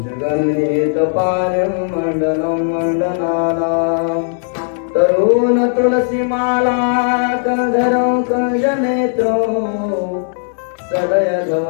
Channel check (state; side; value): silent; right; 67 dB below the other